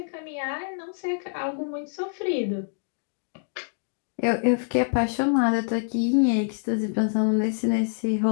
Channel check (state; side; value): silent; right; digital silence